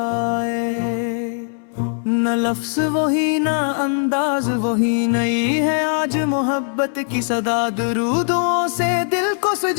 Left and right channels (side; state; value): right; silent; 63 dB below the other